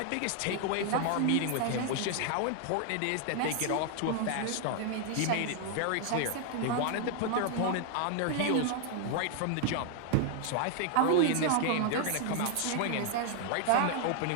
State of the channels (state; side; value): different; both; correlation 0.00